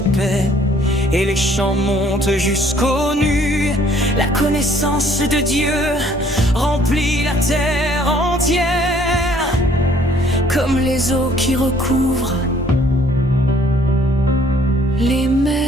et les chants montent jusqu'aux nues. La connaissance de Dieu remplit la terre entière, Comme les eaux qui recouvrent les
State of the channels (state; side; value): normal; both; correlation 0.60